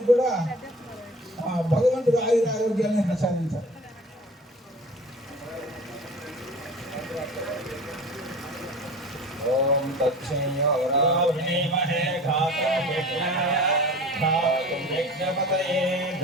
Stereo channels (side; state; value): both; normal; correlation 0.39